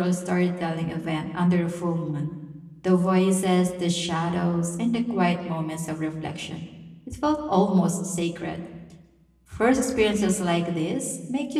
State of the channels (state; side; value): identical; both; correlation 1.00